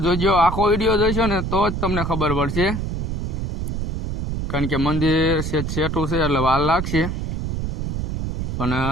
જોજો, આખો વિડીયો જોઈશો ને તો જ તમને ખબર પડશે, કારણ કે મંદિર સેટું છે એટલે વાર લાગશે. પણ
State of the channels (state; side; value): noise; right; rumble, 3 dB below the sound